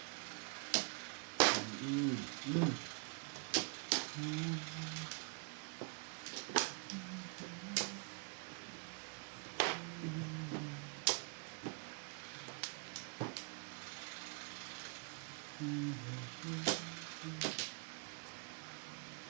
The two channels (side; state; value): left; quieter; 35.8 dB